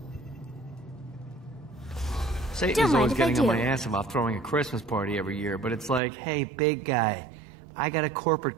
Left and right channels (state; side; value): drops out; left; at 6.0 s